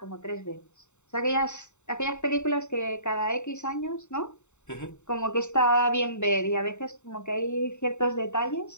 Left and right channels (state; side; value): late; right; 0.83 ms